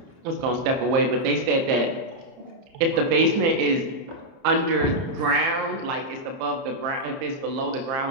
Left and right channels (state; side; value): late; left; 30 ms